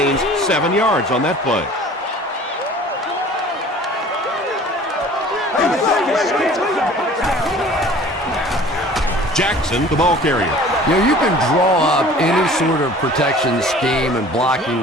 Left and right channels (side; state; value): both; normal; correlation 0.47